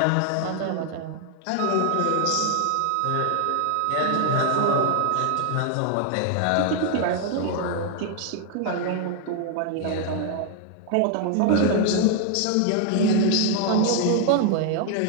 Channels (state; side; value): different; both; correlation 0.00